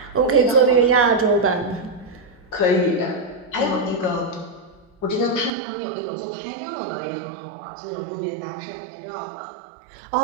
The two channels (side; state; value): left; drops out; at 5.6 s